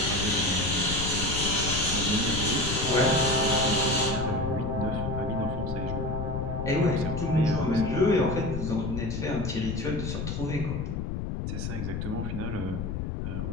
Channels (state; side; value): noise; left; rumble, 3 dB below the sound